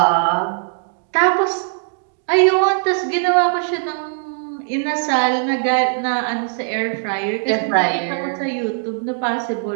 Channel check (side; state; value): left; silent; digital silence